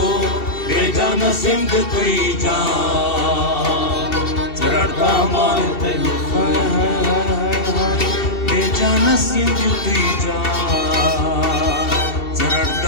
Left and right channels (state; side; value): late; right; 2.7 ms